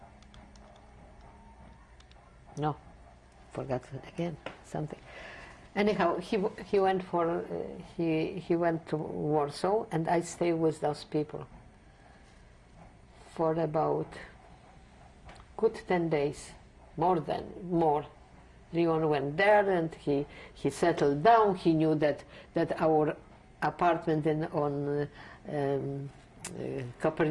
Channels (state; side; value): identical; both; correlation 1.00